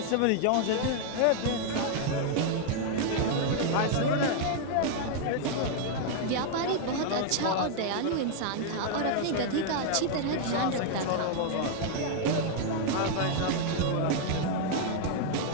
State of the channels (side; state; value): both; different; correlation 0.00